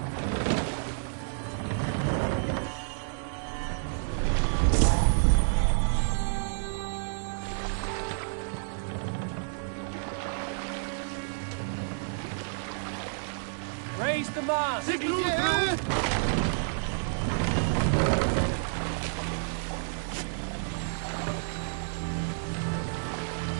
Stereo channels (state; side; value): silent; left; digital silence